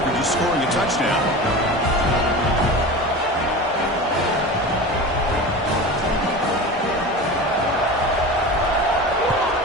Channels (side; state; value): both; normal; correlation 0.31